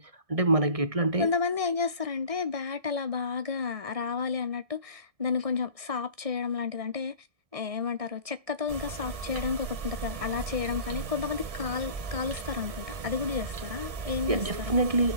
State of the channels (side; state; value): left; late; 1.6 ms